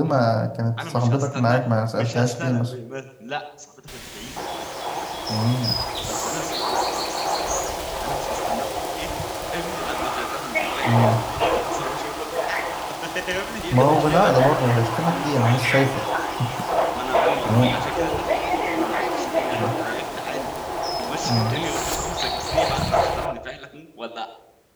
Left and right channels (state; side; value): identical; both; correlation 1.00